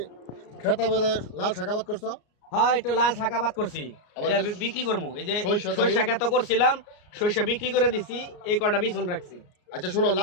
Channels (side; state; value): right; late; 34 ms